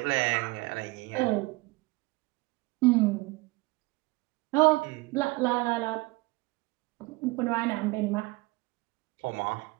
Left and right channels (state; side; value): quieter; left; 23.4 dB